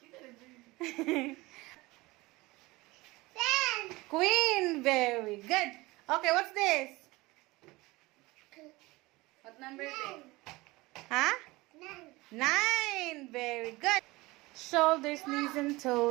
Queen. Very good. Okay, what's this? What number is it? Huh? 9. Very good. Shoulders, knees, and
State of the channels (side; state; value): left; quieter; 21.5 dB